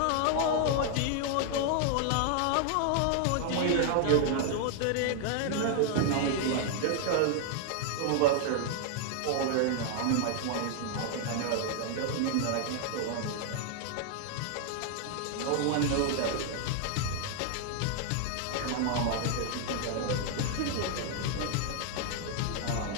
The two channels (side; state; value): both; different; correlation 0.00